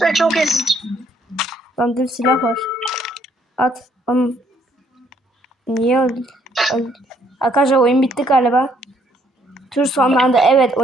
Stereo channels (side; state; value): both; normal; correlation 0.67